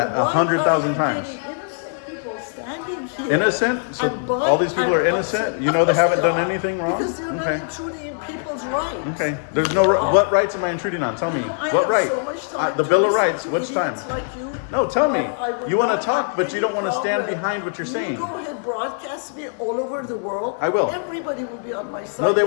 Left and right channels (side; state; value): right; silent; digital silence